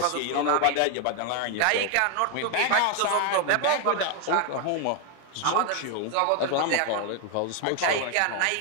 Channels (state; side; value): different; both; correlation 0.01